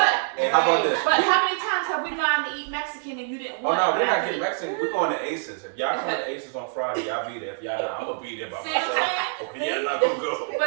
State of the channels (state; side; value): silent; left; 62 dB below the other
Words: and how about this? But how many times have we gone to eat Mexican and you didn't Oh want no, it? we're not getting Mexican. We're going to Aces. If y'all come to Aces on Friday, y'all be there. If y'all not, I'm gonna be there by See what I'm myself. saying? Okay, y'all not gonna go.